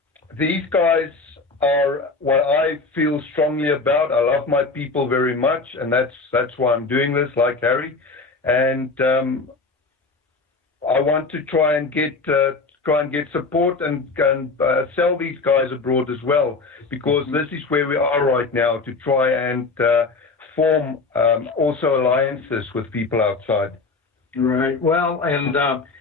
these guys are what I feel strongly about. I love my people very much, and that's why I'm doing this, like Harry. And I want to try and get support and sell these guys abroad as well, because this is where we are right now, to try and form also alliances with people outside. Right. Well, and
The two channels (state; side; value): quieter; right; 3.9 dB